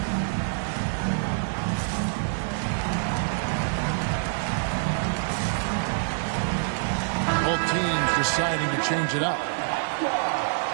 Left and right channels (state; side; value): silent; left; digital silence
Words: Both teams deciding to change it up.